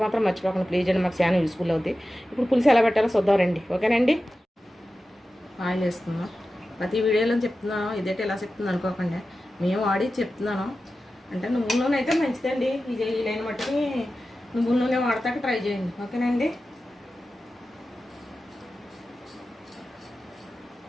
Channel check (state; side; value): normal; both; correlation 0.94